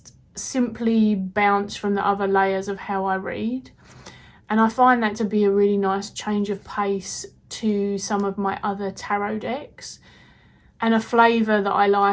simply bounce from the other layers of how I read. And I find that to be a really nice change of pace to some of my other tarot decks, and a flavour that I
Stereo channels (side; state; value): both; identical; correlation 1.00